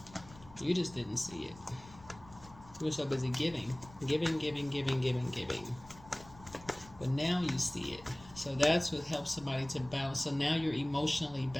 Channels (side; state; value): left; noise; rumble, 21 dB below the sound